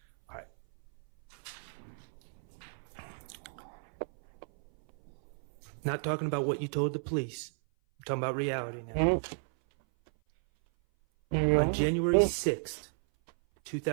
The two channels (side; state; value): left; silent; 56 dB below the other